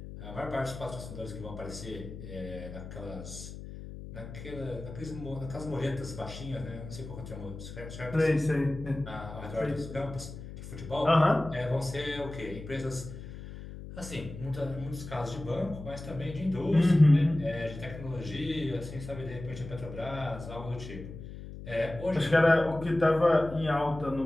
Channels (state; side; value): noise; left; hum, 11 dB below the sound